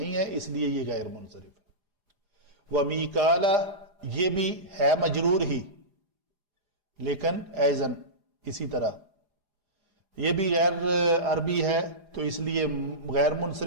ہے، اس لیے یہ غیر منصرف ہے۔ ومیکالا یہ بھی ہے مجرور ہی، لیکن ایزن اسی طرح یہ بھی غیر عربی ہے، تو اس لیے غیر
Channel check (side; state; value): left; late; 4.9 ms